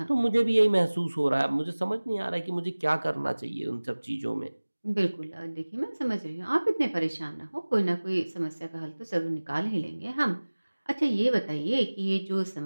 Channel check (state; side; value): inverted; both; correlation -1.00